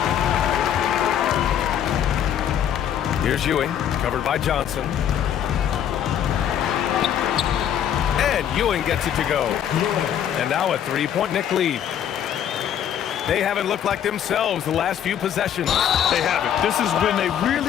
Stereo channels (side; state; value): right; quieter; 9.7 dB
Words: Here's Ewing, covered by Johnson. And Ewing gets it to go. And now a 3-point Knick lead. They haven't looked like themselves the last few possessions. They haven't. This is when they